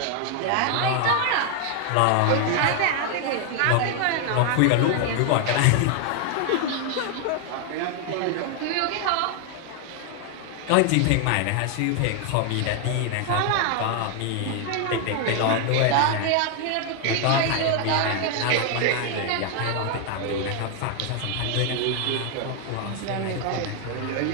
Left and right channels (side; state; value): both; different; correlation 0.00